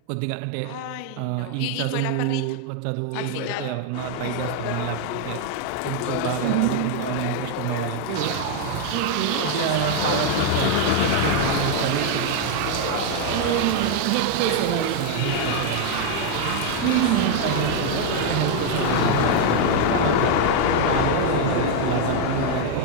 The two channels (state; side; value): different; both; correlation 0.01